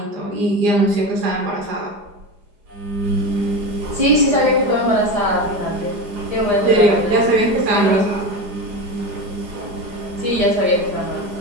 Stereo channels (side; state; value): left; late; 4.9 ms